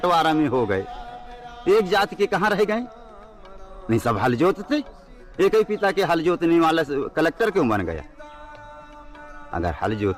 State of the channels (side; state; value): both; identical; correlation 1.00